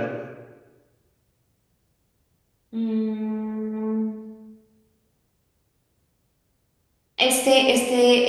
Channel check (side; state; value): both; identical; correlation 1.00